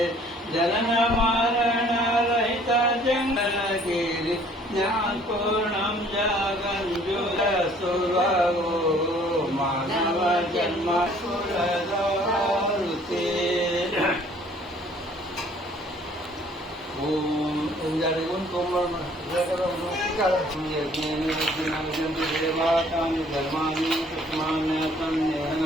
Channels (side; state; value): both; normal; correlation 0.57